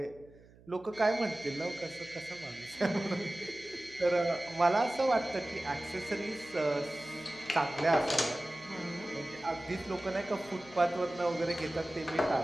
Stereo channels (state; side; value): noise; right; hum, 25 dB below the sound